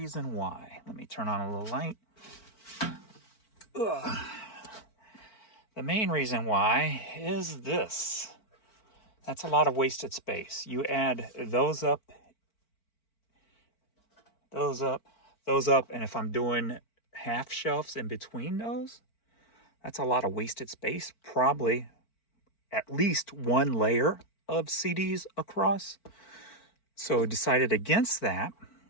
why. Let me turn on a little light. Ugh. The main reason why is this. That's a lot of wasted space. You add those up, and if I'm doing half shelves in between those, that's a lot of wasted space. Probably at least one layer of CDs across. So I decided against that.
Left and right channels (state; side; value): late; right; 4.5 ms